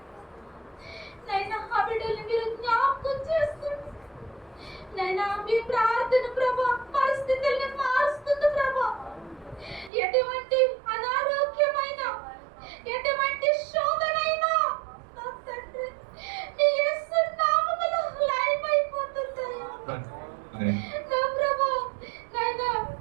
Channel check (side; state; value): left; drops out; at 9.9 s